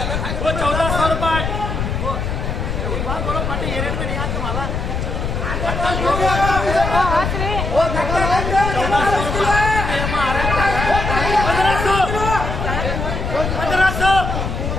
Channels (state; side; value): noise; left; rumble, 2 dB below the sound